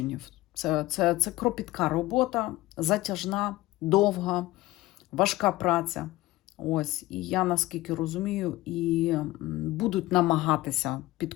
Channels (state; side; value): quieter; right; 17.8 dB